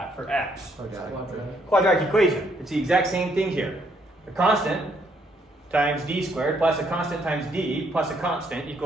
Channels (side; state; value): both; normal; correlation 0.70